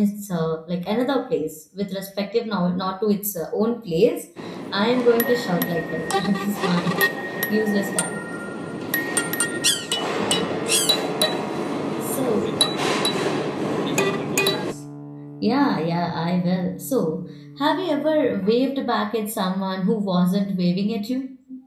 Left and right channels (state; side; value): identical; both; correlation 1.00